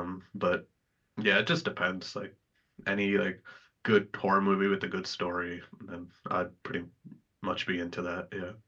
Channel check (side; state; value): both; identical; correlation 1.00